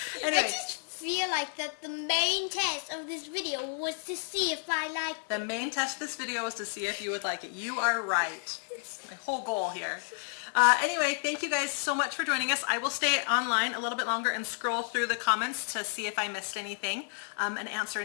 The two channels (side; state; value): right; silent; 57 dB below the other